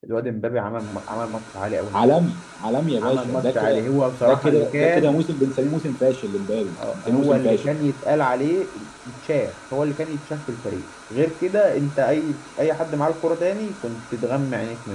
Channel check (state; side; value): identical; both; correlation 1.00